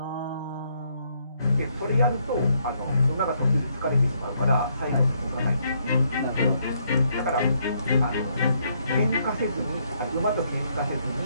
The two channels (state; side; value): inverted; both; correlation -0.72